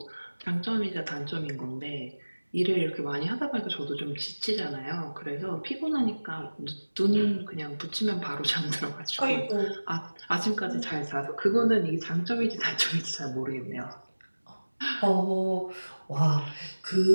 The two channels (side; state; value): both; inverted; correlation -1.00